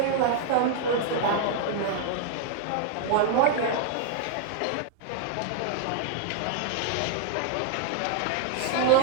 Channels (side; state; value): both; different; correlation -0.01